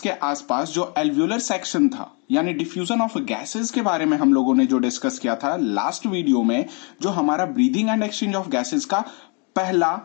के आसपास जो एल्वियोलर सेक्शन था यानी डिफ्यूजन ऑफ गैसेस के बारे में हम लोगों ने जो डिस्कस किया था लास्ट वीडियो में, जो हमारा breathing and exchange of gases का पहला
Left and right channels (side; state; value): right; quieter; 35.1 dB